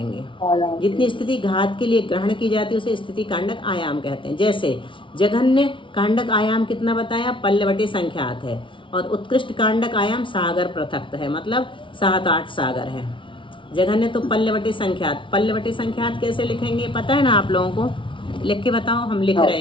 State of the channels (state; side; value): late; right; 0.25 ms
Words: जितनी स्थिति घात के लिए ग्रहण की जाती है उसे स्थिति कांडक आयाम कहते हैं। जैसे जघन्य कांडक आयाम कितना बताया, पल्लवटे संख्यात है, और उत्कृष्ट कांडक आयाम सागर पृथक्त है, मतलब 7-8 सागर है। जघन्य तो पल्लवटे संख्यात, पल्लवटे संख्यात कैसे लिखेंगे पता है ना आप लोगों को, लिख के बताओ। हम लिख रहे हैं